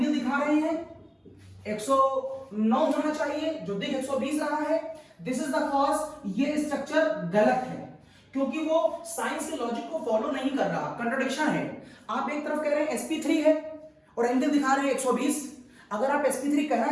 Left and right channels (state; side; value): identical; both; correlation 1.00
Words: दिखा रहे हैं 109 होना चाहिए, जो दिख 120 रहा है। दिस इज द कॉज ये स्ट्रक्चर गलत है, क्योंकि वो साइंस के लॉजिक को फॉलो नहीं कर रहा, कंट्राडिक्शन है। आप एक तरफ कह रहे हैं sp3 है और एंगल दिखा रहे हैं 120। अगर आप sp3